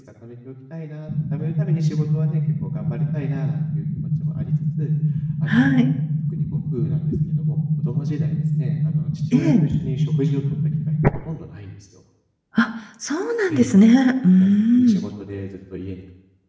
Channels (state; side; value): identical; both; correlation 1.00